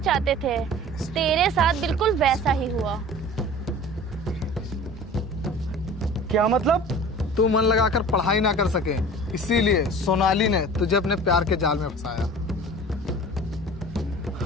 थे तेरे साथ बिल्कुल वैसा ही हुआ। क्या मतलब? तू मन लगाकर पढ़ाई ना कर सके, इसीलिए सोनाली ने तुझे अपने प्यार के जाल में फंसाया।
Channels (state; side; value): normal; both; correlation 0.41